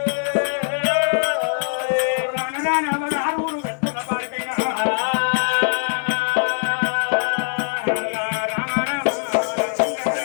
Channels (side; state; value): right; silent; digital silence